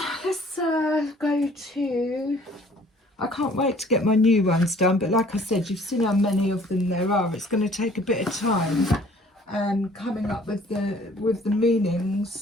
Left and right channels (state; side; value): normal; both; correlation 0.55